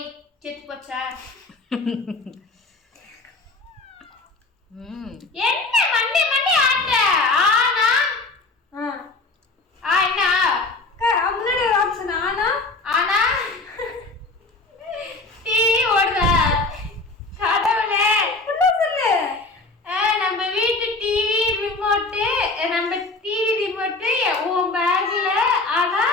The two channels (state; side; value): quieter; right; 3.4 dB